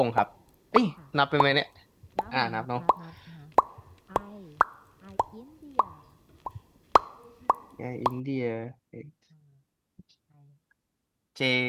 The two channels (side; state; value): both; identical; correlation 1.00